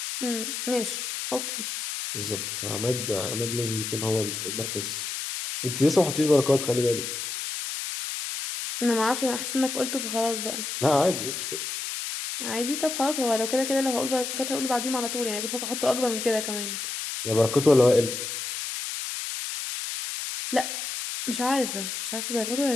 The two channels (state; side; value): noise; left; hiss, 5 dB below the sound